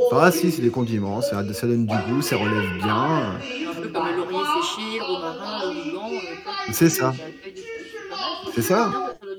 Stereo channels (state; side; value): identical; both; correlation 1.00